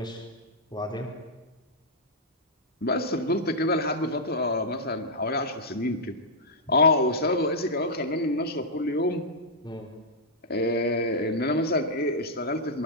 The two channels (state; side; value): normal; both; correlation -0.08